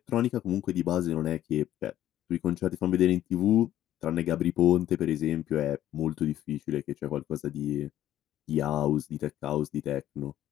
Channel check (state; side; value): quieter; right; 12.5 dB